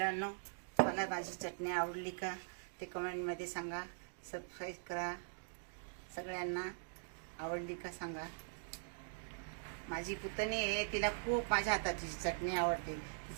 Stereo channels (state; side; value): silent; left; digital silence